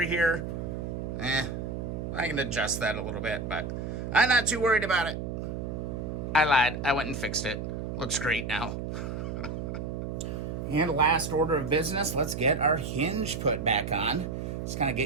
here. I can adjust that a little bit, but I'm not too worried about it. I lied. I went and fixed it. Looks great now. And last order of business, let's get our hinge put back on. Just kind of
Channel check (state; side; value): noise; right; hum, 5 dB below the sound